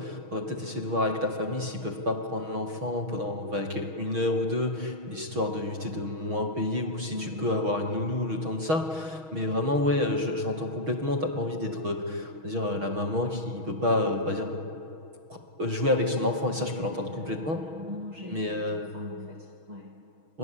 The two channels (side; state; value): left; late; 6.3 ms